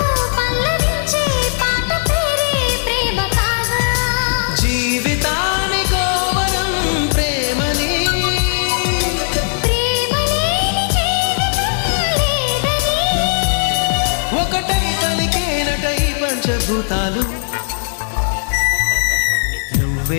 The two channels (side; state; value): right; silent; 68 dB below the other